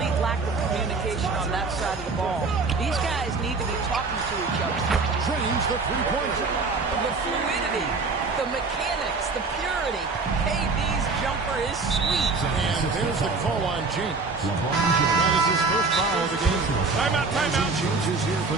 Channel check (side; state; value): left; quieter; 4.1 dB